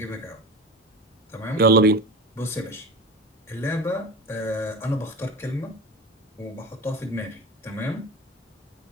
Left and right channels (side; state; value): both; normal; correlation 0.29